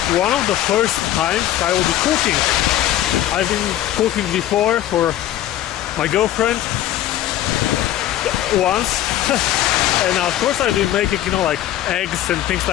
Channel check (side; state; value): right; quieter; 13.1 dB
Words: one of the first times I will be cooking. I've been cooking before for my girlfriend once and of course I've been making, you know, like eggs and things